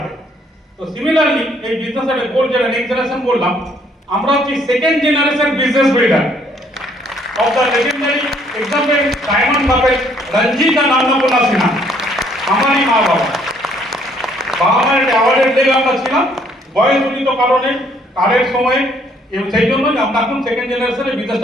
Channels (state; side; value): normal; both; correlation 0.65